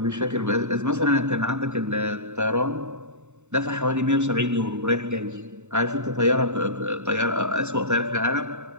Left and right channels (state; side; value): late; left; 0.83 ms